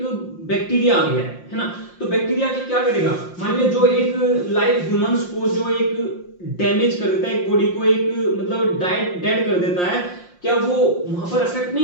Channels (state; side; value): late; right; 5.7 ms